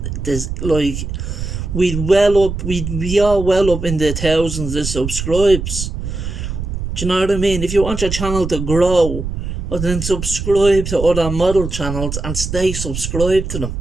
this, like, we'd be all well up in the thousands of subscribes. Do you know what I mean? If you want your channel to grow, well, then subscribe to other model channels and stay subscribed to them.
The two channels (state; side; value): noise; right; rumble, 5 dB below the sound